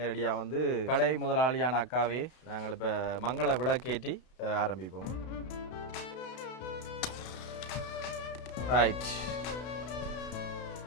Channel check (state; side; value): late; right; 32 ms